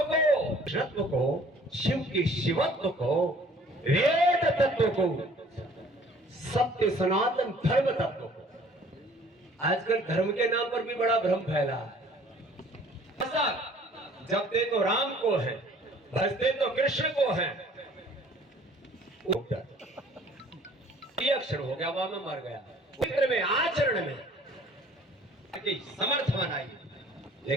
को, कृष्णत्व को, शिव के शिवत्व को, वेद तत्व को, सत्य सनातन धर्म तत्व को। आजकल धर्म के नाम पर भी बड़ा भ्रम फैला है। जपते तो राम को है, भजते तो कृष्ण को है। ये अक्षर हो गया, वहां में मर गया। चित्र में, आचरण में समर्थ बनाइए,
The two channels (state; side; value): normal; both; correlation 0.54